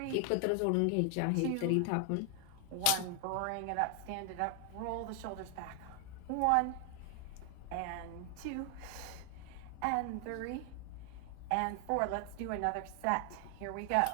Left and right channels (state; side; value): different; both; correlation 0.00